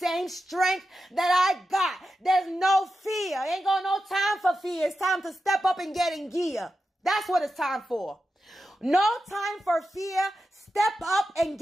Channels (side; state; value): both; normal; correlation 0.90